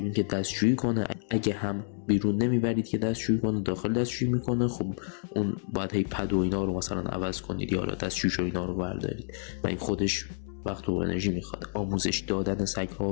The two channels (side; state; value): right; silent; digital silence